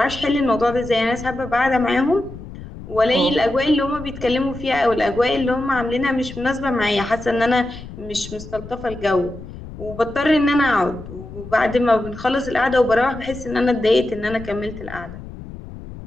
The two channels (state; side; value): noise; left; rumble, 13 dB below the sound